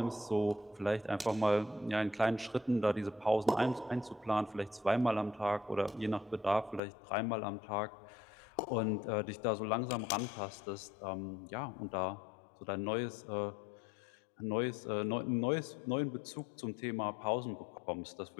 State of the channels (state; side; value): drops out; right; at 6.8 s